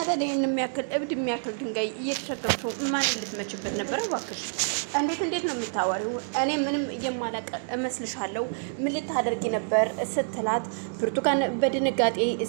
ታዲያ የሚያክል እብድ የሚያክል ድንጋይ እየተሸከምሽው ማን ልትመችበት ነበር እባክሽ እንዴት ነው የምታወሪው እኔ ምንም የማላቅ እመስልሻለሁ ምን ልታደርጊ ነበር ስትላት ብርቱካን በድንጋጤ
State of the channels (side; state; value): left; silent; digital silence